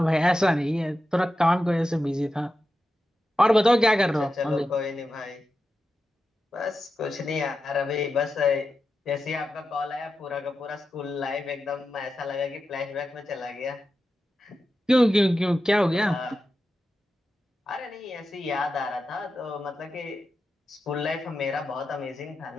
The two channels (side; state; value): both; normal; correlation 0.90